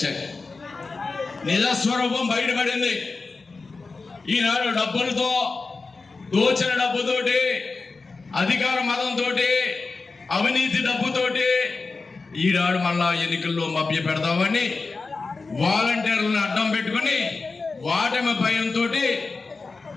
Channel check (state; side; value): quieter; right; 4.0 dB